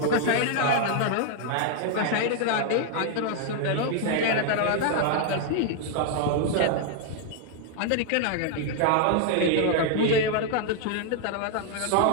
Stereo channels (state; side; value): different; both; correlation 0.00